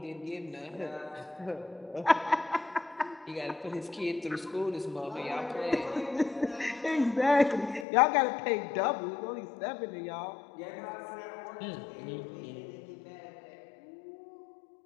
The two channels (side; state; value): right; drops out; at 7.9 s